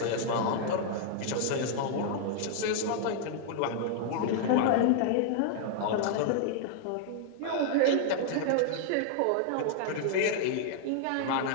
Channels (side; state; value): both; different; correlation 0.00